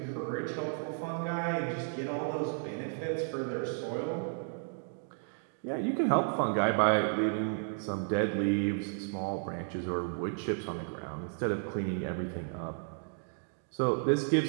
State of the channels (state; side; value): silent; left; 56 dB below the other